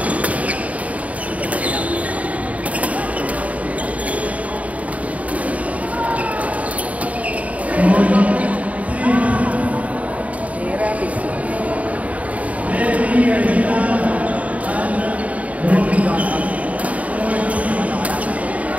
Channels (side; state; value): left; late; 0.069 ms